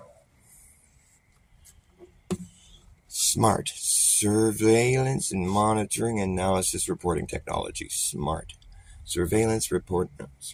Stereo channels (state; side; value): identical; both; correlation 1.00